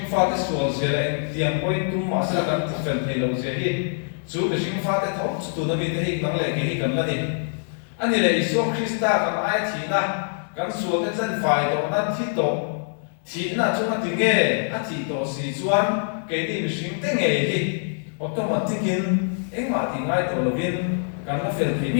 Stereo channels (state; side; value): silent; right; 62 dB below the other